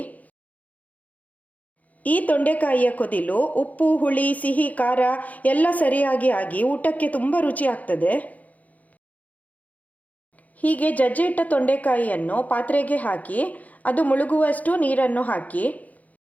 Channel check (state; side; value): late; right; 0.076 ms